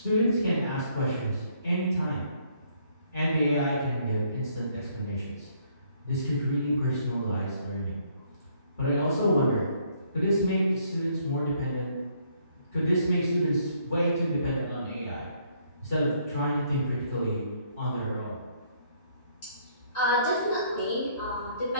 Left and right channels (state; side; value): inverted; both; correlation -0.67